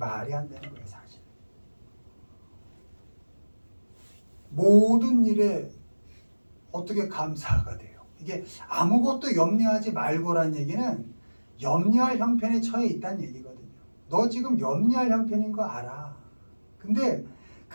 안 되는 거예요, 사실. 모든 일에 어떻게 감사가 돼요? 이게 아무것도 염려하지 말고란 얘기는 염려할 형편에 처해 있다는 얘기거든요. 너 지금 염려할 형편인 거 알아. 근데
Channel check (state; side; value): inverted; both; correlation -1.00